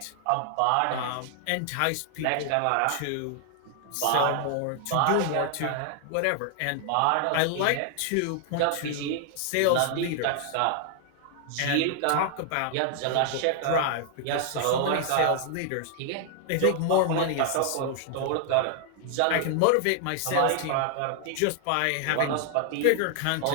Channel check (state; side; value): different; both; correlation 0.00